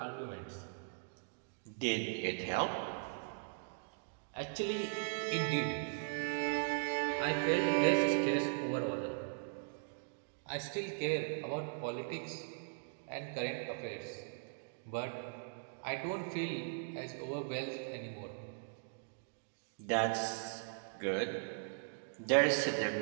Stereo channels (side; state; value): left; silent; digital silence